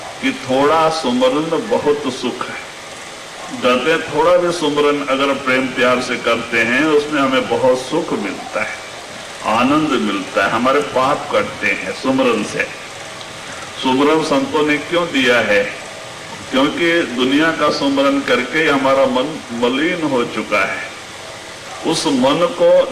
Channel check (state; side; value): identical; both; correlation 1.00